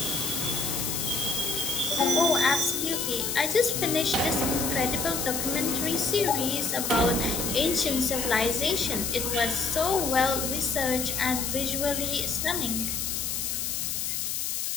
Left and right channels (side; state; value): left; noise; hiss, 1 dB below the sound